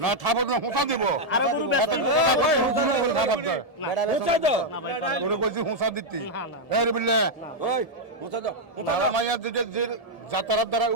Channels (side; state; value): right; late; 1.7 ms